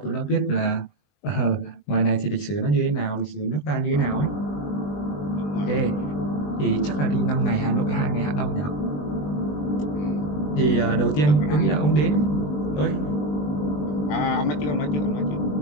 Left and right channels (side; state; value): right; late; 20 ms